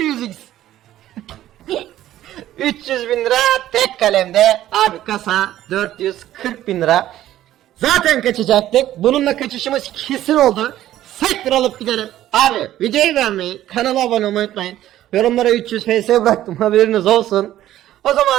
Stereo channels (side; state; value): left; quieter; 13.2 dB